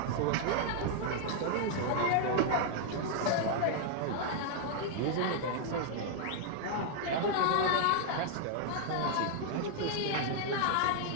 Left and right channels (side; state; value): both; different; correlation 0.00